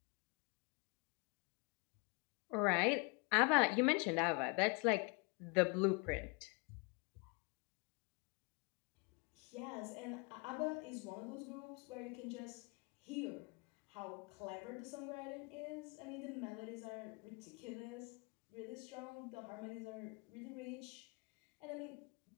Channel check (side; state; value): right; quieter; 31.1 dB